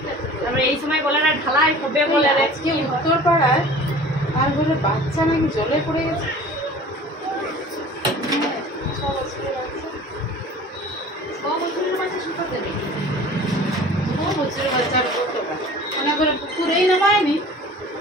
তারপরে এই সময় বলে না ঢালাই হবে বলে রে। আজকে উত্তর পাড়ায় আর বলে বাচ্চা নাকি জলে পড়ে গেছে। মনে করে পুকুরেই নামায়নি।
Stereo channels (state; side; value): normal; both; correlation 0.44